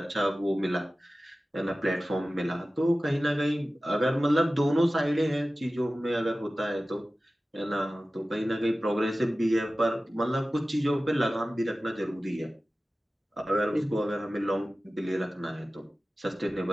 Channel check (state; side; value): normal; both; correlation 0.96